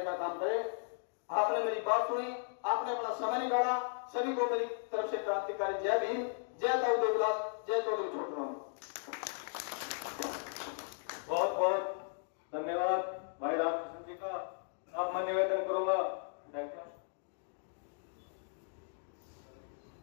का काम करें। आपने मेरी बात सुनी, आपने अपना समय निकाला, सभी को मेरी तरफ से क्रांतिकारी जय भीम, जय ताऊ देवलाल, जय चौधरी छोटराम। बहुत बहुत धन्यवाद भाई रामकृष्ण जी का। अब मैं निवेदन करूंगा,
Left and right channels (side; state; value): right; silent; digital silence